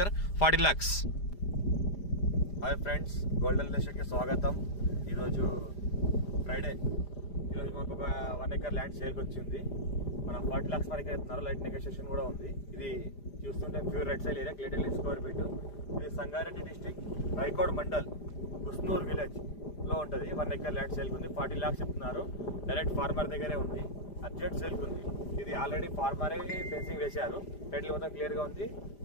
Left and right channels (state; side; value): late; right; 5.0 ms